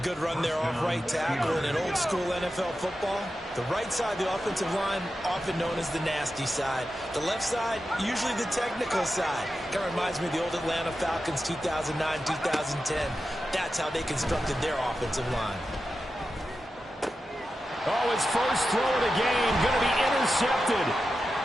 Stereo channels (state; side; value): normal; both; correlation 0.91